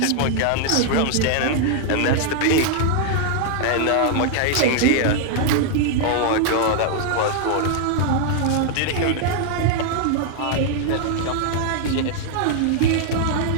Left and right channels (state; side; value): different; both; correlation 0.00